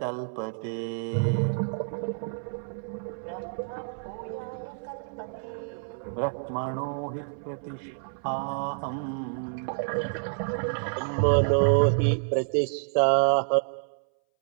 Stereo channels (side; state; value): left; silent; 59 dB below the other